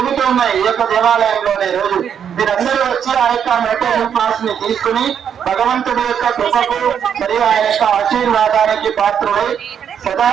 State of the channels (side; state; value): left; quieter; 8.2 dB